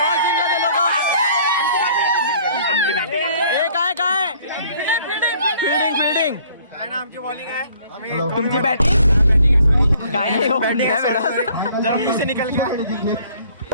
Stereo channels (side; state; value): both; inverted; correlation -0.58